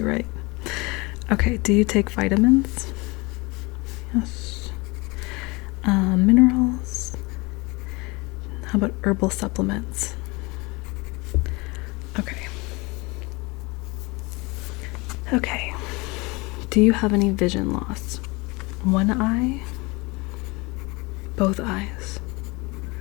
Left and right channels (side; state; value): right; quieter; 25.7 dB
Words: right? Okay, do you take vitamins? Yes. Minerals? How about herbal supplements? Okay. Okay. Do you have any vision loss? One eye? Both eyes?